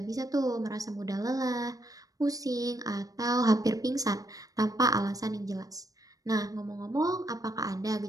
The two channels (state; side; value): late; left; 0.17 ms